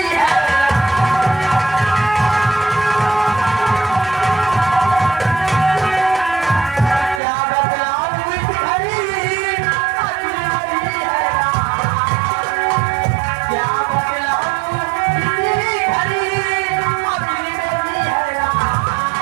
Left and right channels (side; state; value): left; drops out; at 7.2 s